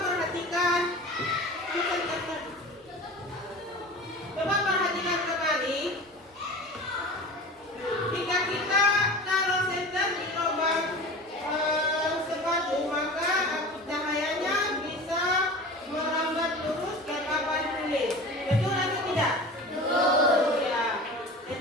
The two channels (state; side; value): normal; both; correlation 0.35